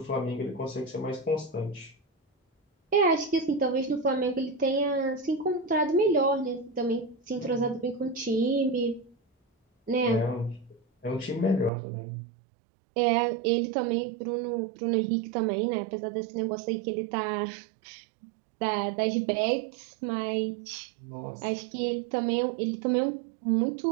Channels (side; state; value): left; drops out; at 11.7 s